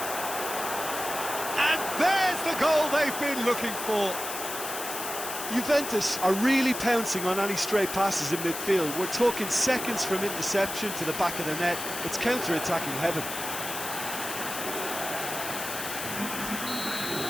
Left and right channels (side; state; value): left; noise; hiss, 6 dB below the sound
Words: And there's the goal they've been looking for. Juventus are really pouncing on any stray passes in midfield. We're talking seconds from interception to the back of the net. It's counter-attacking heaven.